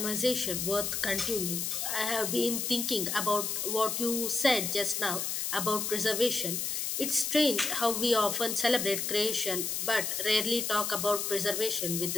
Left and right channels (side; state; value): left; noise; hiss, 1 dB below the sound